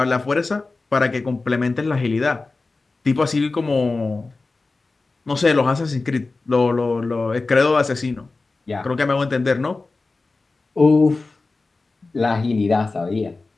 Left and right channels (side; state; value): right; quieter; 3.6 dB